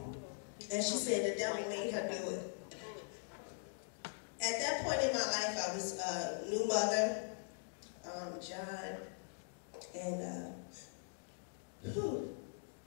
and she said the devil made her do it. At that point in my life, I was a new mother, John, and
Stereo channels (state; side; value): silent; right; digital silence